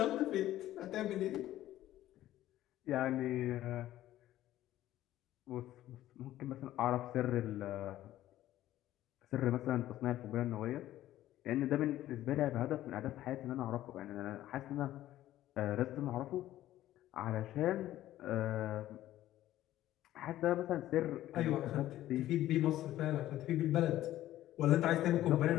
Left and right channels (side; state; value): right; quieter; 13.9 dB